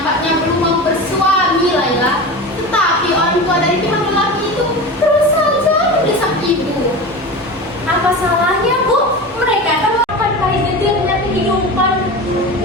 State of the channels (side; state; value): both; normal; correlation 0.28